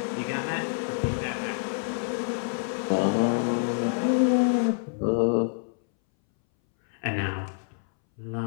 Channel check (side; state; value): right; silent; 60 dB below the other